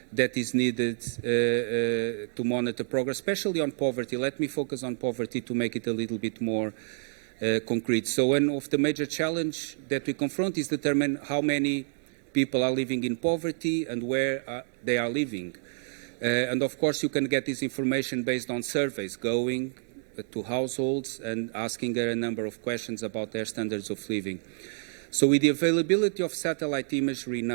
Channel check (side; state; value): left; silent; digital silence